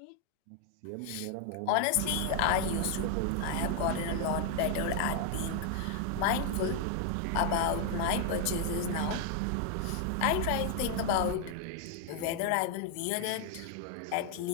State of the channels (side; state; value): both; different; correlation 0.00